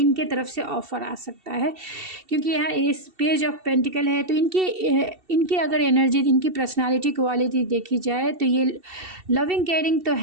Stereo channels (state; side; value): late; left; 2.7 ms